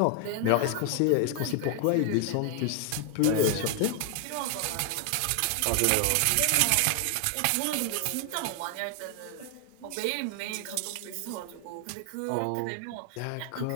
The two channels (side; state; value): both; different; correlation 0.00